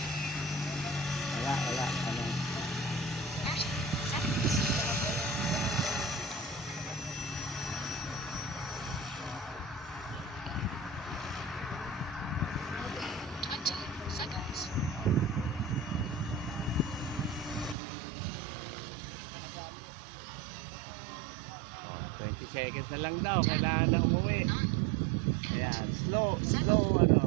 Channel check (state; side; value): drops out; left; at 17.8 s